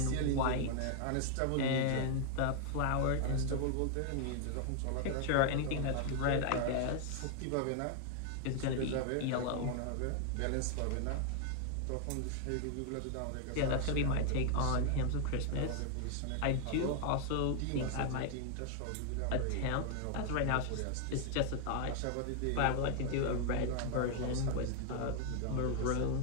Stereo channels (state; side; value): different; both; correlation 0.00